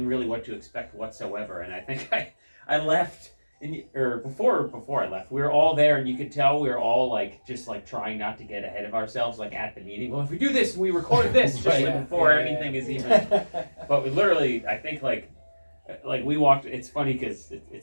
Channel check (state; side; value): inverted; both; correlation -1.00